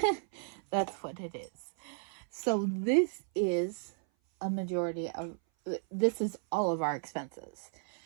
That's what it is. So this is a majority of, this is all of our expenses.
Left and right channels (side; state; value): left; silent; 55 dB below the other